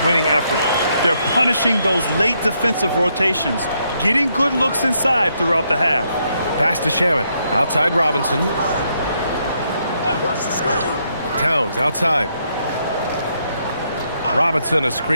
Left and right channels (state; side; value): inverted; both; correlation -0.76